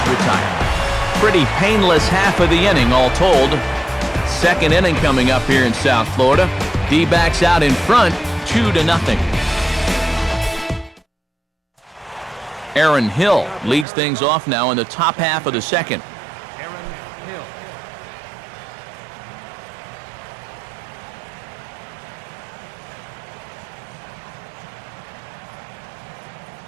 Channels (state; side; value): drops out; left; at 13.9 s